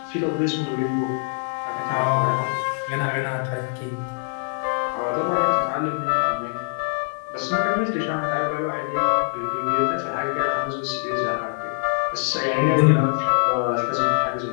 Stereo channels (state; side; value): silent; right; 60 dB below the other